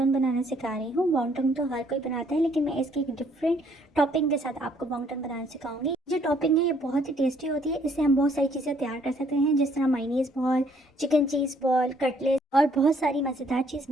बनाना सिखा रही हूँ। वॉन्गटन तो हर कोई बनाता है, लेकिन मैं इसकी एक डिफरेंट टॉपिंग के साथ आपको वॉन्गटन बनाना सिखाऊंगी। जो टॉपिंग है ये बहुत ही टेस्टी होती है। इससे हम बहुत सारी चीज़ें तैयार कर सकते हैं, जिस तरह मायनीज़ बॉल, चिकन चीज़ बॉल, कटलेट और बहुत सारी मज़ेदार चीज़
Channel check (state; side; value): normal; both; correlation 0.65